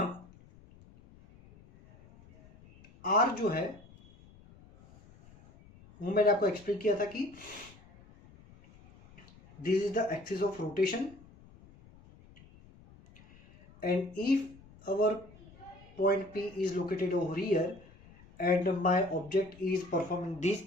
r जो है वो मैंने आपको explain किया था कि this is the axis of rotation and if our point P is located over here and my object is performing this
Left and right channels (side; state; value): left; noise; rumble, 24 dB below the sound